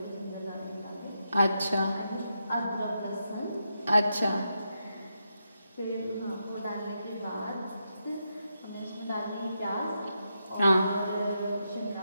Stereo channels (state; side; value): inverted; both; correlation -0.84